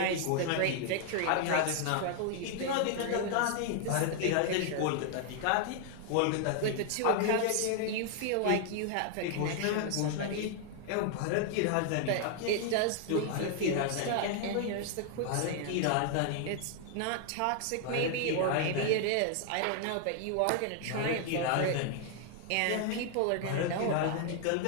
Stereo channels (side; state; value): both; different; correlation 0.00